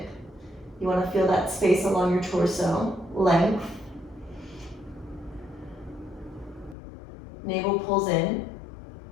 You want to feel that space along your torso, length. Navel pulls in.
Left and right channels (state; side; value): drops out; right; at 6.8 s